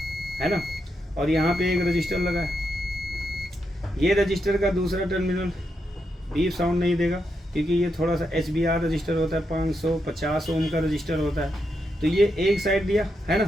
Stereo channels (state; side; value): normal; both; correlation 0.83